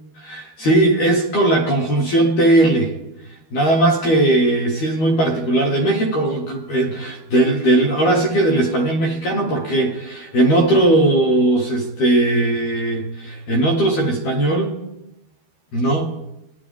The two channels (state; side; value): late; right; 12 ms